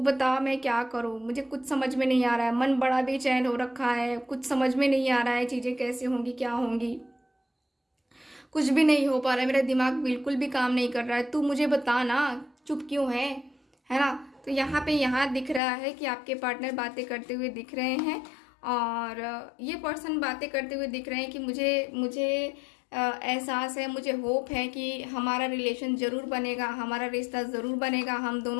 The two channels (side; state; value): right; drops out; at 15.6 s